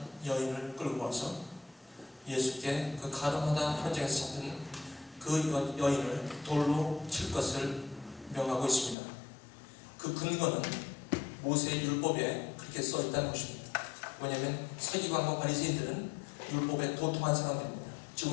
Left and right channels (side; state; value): right; drops out; at 9.0 s